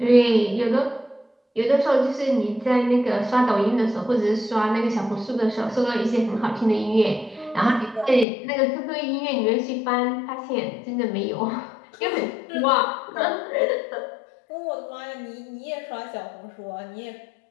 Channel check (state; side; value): drops out; right; at 8.2 s